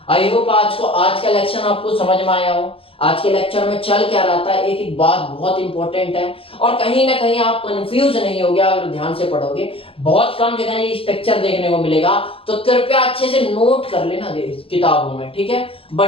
आई होप आज का लेक्चर आपको समझ में आया हो। आज के लेक्चर में चल क्या रहा था, एक एक बात बहुत इंपॉर्टेंट है, और कहीं ना कहीं आप कंफ्यूज नहीं होगे अगर ध्यान से पढ़ोगे। बहुत कम जगह ये स्ट्रक्चर देखने को मिलेगा, तो कृपया अच्छे से नोट कर लेना किताबों में, ठीक है।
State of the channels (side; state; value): right; late; 0.27 ms